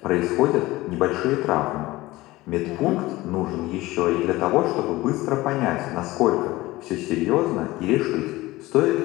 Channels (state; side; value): quieter; right; 19.0 dB